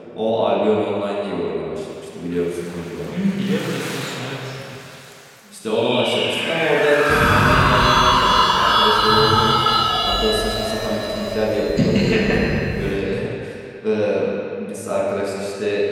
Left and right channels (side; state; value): both; identical; correlation 1.00